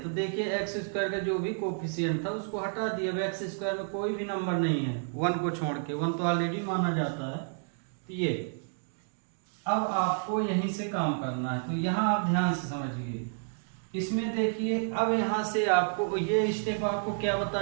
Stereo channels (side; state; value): left; silent; digital silence